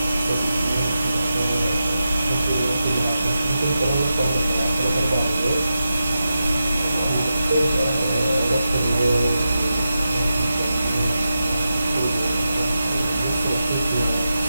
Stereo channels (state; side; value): inverted; both; correlation -0.90